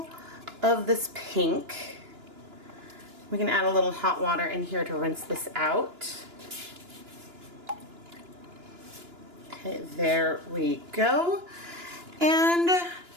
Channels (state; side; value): late; left; 2.9 ms